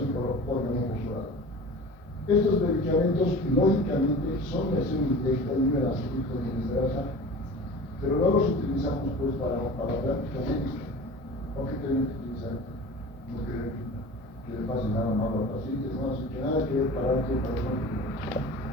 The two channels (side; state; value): both; normal; correlation 0.38